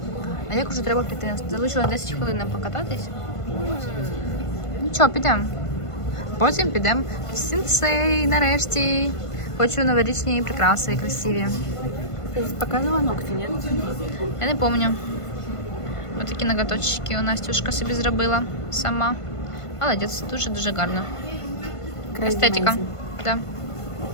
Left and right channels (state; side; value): late; right; 1.5 ms